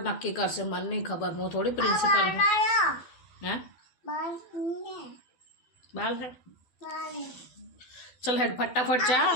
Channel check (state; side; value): late; right; 12 ms